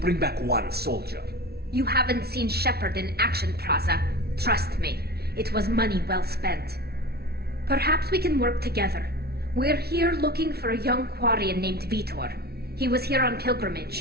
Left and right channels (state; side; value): late; left; 0.46 ms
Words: back one soldier. You haven't seen Shepard in action, Praza. Trust me, it was money well spent. Perhaps we can work together. We're here looking for a young Quarian named Vitor. He was here on